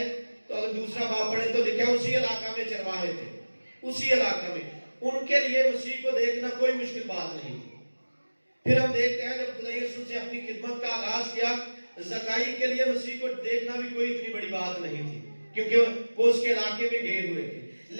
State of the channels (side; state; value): both; inverted; correlation -1.00